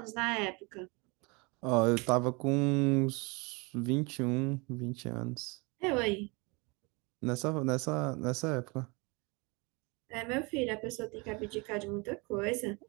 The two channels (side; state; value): left; quieter; 28.4 dB